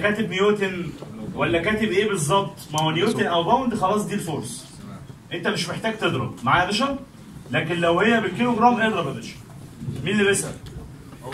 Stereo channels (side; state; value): both; identical; correlation 1.00